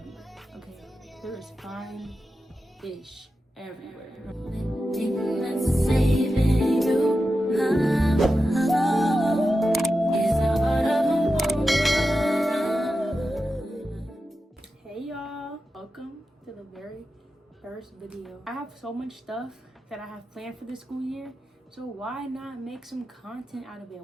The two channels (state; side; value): normal; both; correlation 0.91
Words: okay? There is fine-ish everywhere. Hey y'all, welcome to the very first video. I have so much stuff that I have planned for this school year, so why not make some content out of it?